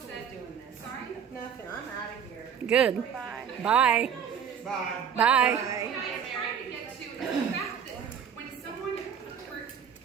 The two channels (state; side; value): quieter; left; 7.8 dB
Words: said, sorry? Nothing, I'm out of here. Good. Bye. Bye. Bye. Bye. What I was trying to get to is the fact that when someone,